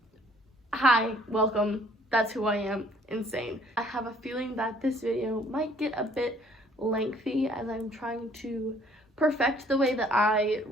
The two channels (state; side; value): normal; both; correlation 0.60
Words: hi, welcome. That's who I am, insane. I have a feeling that this video might get a bit lengthy as I'm trying to perfect the way that I